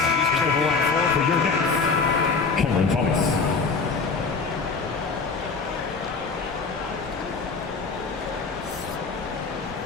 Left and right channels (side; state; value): right; quieter; 4.7 dB